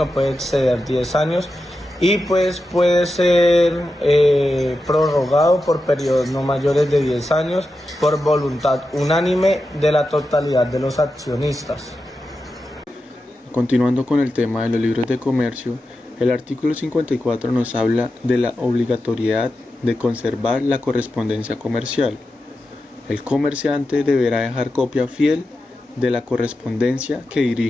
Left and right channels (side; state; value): both; normal; correlation 0.90